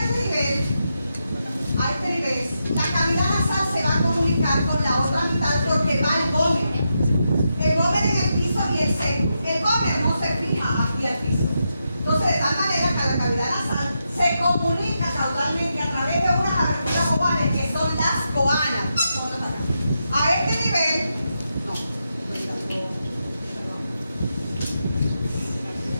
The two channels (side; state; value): both; inverted; correlation -0.85